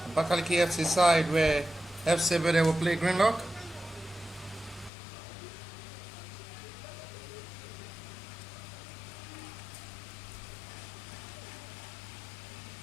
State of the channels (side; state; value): right; drops out; at 4.9 s